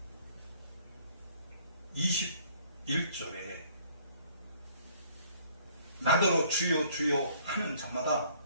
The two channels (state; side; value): inverted; both; correlation -0.59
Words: 21절에 나더러 주여 주여 하는 자마다